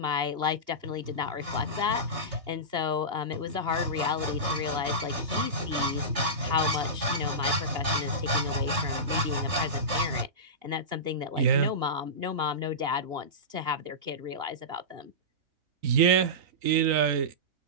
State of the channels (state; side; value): late; left; 3.3 ms